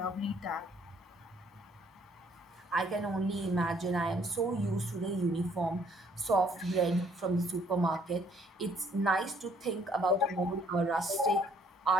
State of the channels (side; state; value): both; normal; correlation 0.64